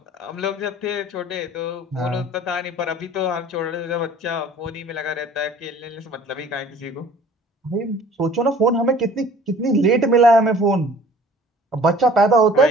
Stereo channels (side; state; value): both; normal; correlation 0.50